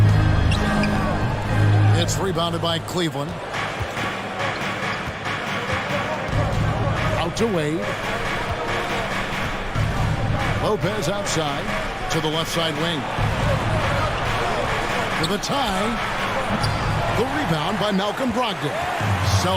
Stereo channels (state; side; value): identical; both; correlation 1.00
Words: It's rebounded by Cleveland. Out to Wade. Lopez outside to the left side wing. For the tie. The rebound by Malcolm Brogdon.